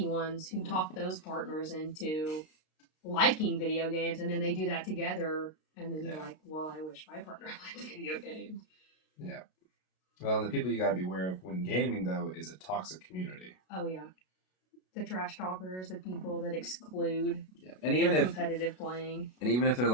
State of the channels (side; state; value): right; late; 32 ms